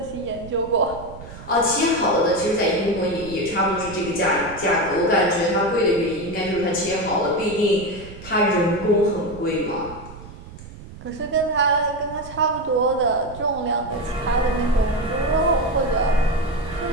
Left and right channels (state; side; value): noise; right; rumble, 16 dB below the sound